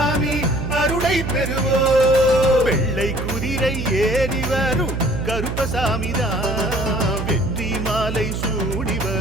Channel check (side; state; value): right; noise; hum, 4 dB below the sound